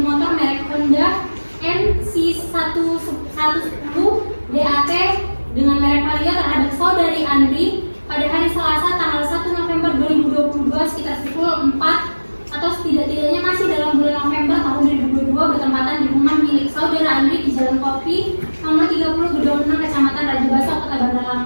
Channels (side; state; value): both; inverted; correlation -1.00